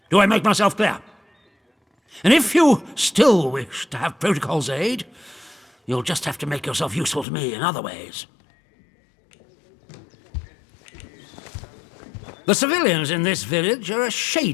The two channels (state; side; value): drops out; right; at 7.2 s